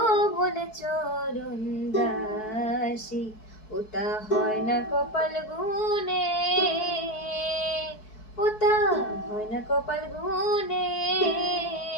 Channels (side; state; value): right; late; 4.6 ms